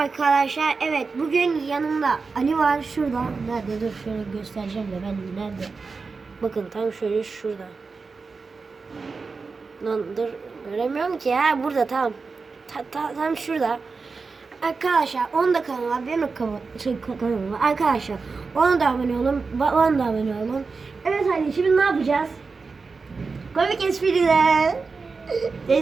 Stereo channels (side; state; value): left; quieter; 4.5 dB